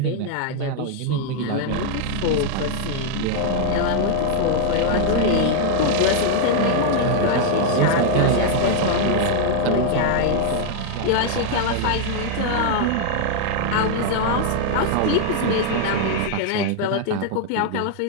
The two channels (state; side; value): different; both; correlation 0.00